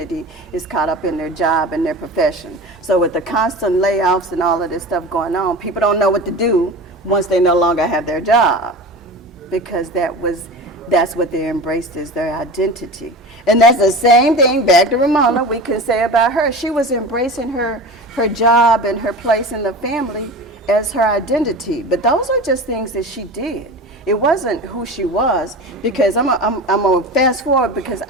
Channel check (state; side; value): normal; both; correlation 0.31